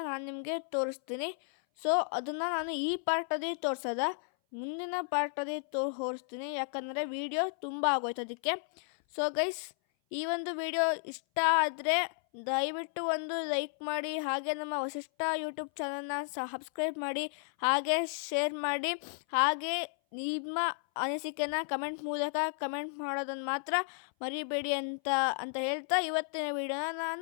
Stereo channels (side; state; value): right; silent; 56 dB below the other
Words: ನಾನು ನಿಮಗೆ ತೋರಿಸ್ತೀನಿ. ಸೊ ಅದನ್ನು ನಾನು ಈ ಪಾರ್ಟಲ್ಲಿ ತೋರಿಸೋದ, ಮುಂದಿನ ಪಾರ್ಟಲ್ಲಿ ತೋರಿಸ್ತೀನಿ, ಯಾಕಂದರೆ ವಿಡಿಯೋ ತುಂಬ ಆಗೋಯ್ತು ಅದಕ್ಕೆ. ಸೊ ಗೈಸ್, ಈ ಒಂದು ವಿಡಿಯೋ ಇಷ್ಟ ಆದರೆ ದಯವಿಟ್ಟು ಒಂದು ಲೈಕ್ ಮಾಡಿ, ಹಾಗೆ ನಮ್ಮ ವಸಿಷ್ಠ ಯೂಟ್ಯೂಬ್ ಚಾನಲ್ನ ಸಬ್ಸ್ಕ್ರೈಬ್ ಮಾಡಿ, ಹಾಗೆ ಶೇರ್ ಮಾಡಿ, ಹಾಗೆ ನಿಮ್ಮ ಅನಿಸಿಕೆನ ಕಮೆಂಟ್ ಮೂಲಕ ಕಮೆಂಟ್ ಮಾಡೋದನ್ನು ಮಾತ್ರ ಮರಿಬೇಡಿ ಅಂತ ಹೇಳ್ತಾ ಇವತ್ತಿನ ವಿಡಿಯೋನ